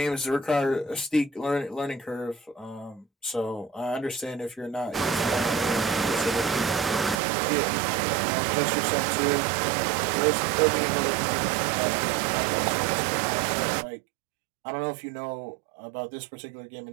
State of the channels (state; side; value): drops out; left; at 7.2 s